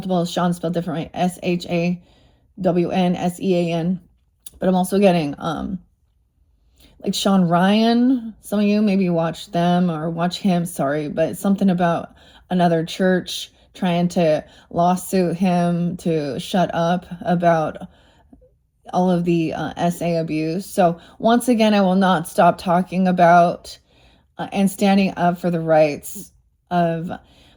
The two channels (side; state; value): both; identical; correlation 1.00